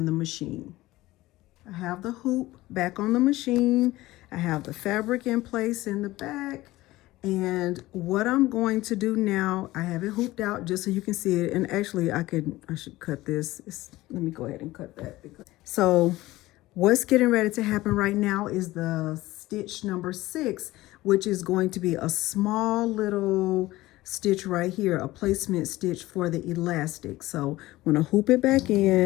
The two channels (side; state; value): right; quieter; 17.9 dB